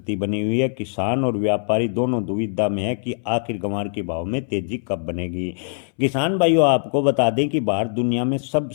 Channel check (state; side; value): silent; right; 63 dB below the other